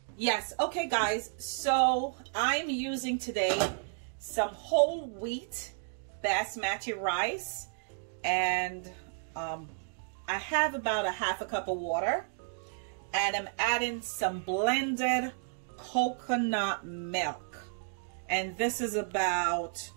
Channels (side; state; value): left; silent; digital silence